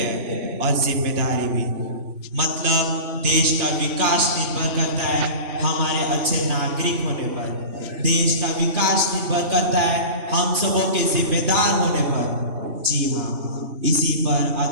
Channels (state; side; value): late; left; 3.0 ms